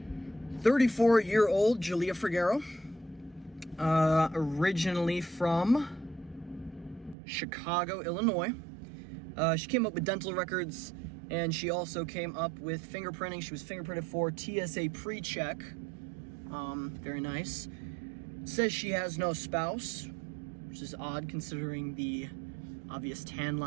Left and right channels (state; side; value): drops out; left; at 7.2 s